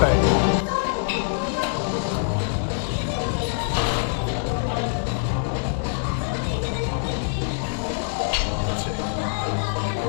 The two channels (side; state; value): right; silent; digital silence